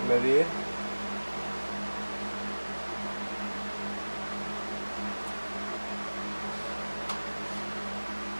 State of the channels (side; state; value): both; inverted; correlation -1.00